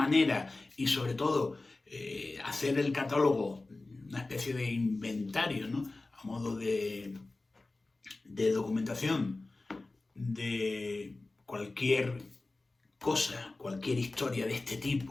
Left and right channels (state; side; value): quieter; right; 3.2 dB